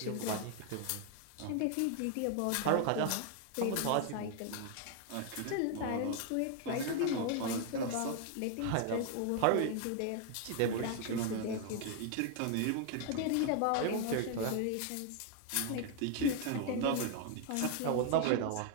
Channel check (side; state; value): both; different; correlation 0.00